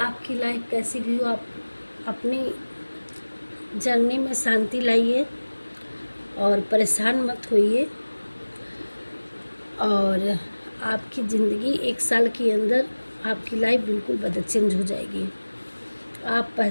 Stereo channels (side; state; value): both; inverted; correlation -1.00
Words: लाइफ कैसी भी हो, आप अपनी जर्नी में शांति लाइए और परेशान मत होइए। और आपकी ज़िंदगी 1 साल के अंदर आपकी लाइफ बिल्कुल चेंज हो जाएगी। आप